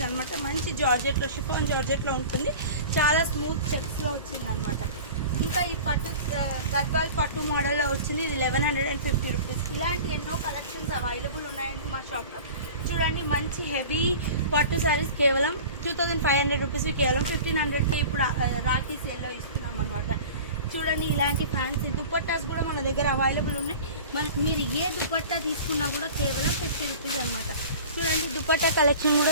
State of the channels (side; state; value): both; inverted; correlation -0.38